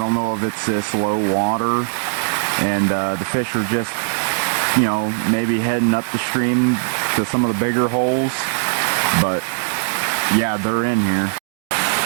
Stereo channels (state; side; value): silent; left; digital silence